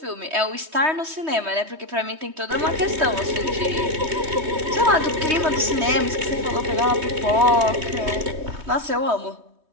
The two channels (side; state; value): left; late; 3.2 ms